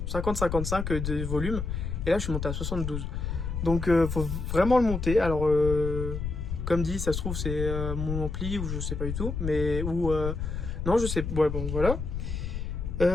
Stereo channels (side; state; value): left; noise; rumble, 4 dB below the sound